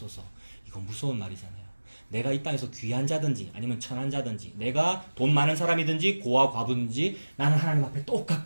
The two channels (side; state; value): both; inverted; correlation -1.00